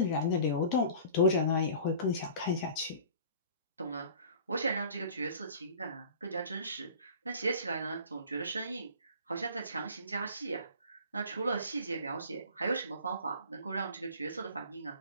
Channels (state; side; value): inverted; both; correlation -0.43